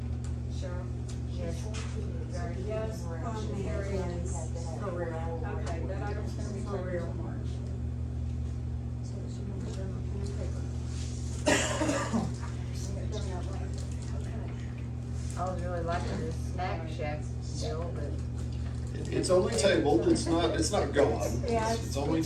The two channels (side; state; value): both; identical; correlation 1.00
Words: Cheryl? Yes. Gary, yes. Motion carries. For real. Okay, that item's gonna be for real, March. I was really liking this snack shack deal, but. It's only tabled, it's not gone. Yeah, It's only